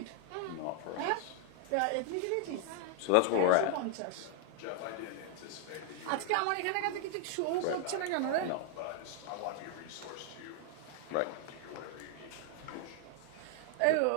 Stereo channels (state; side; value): different; both; correlation 0.00